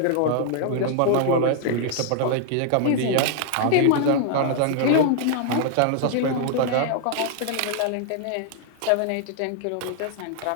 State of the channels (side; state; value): both; different; correlation 0.00